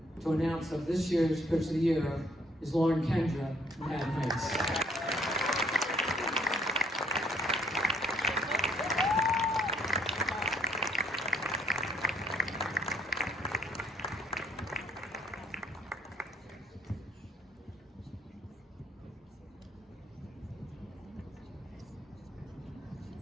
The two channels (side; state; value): both; normal; correlation 0.66